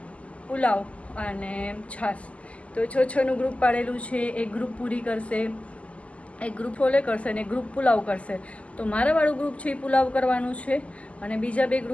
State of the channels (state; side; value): late; right; 0.064 ms